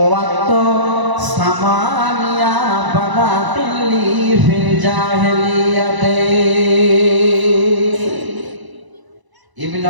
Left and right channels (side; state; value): left; late; 1.0 ms